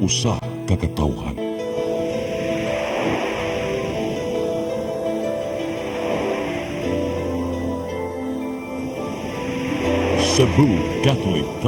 ka katawhan. Cebu Catholic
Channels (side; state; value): both; identical; correlation 1.00